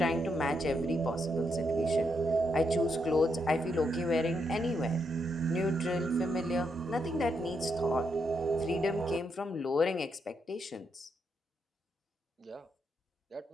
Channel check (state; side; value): normal; both; correlation 0.80